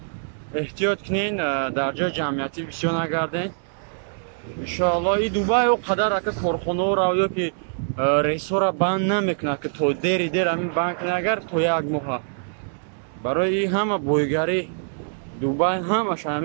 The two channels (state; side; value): silent; left; 63 dB below the other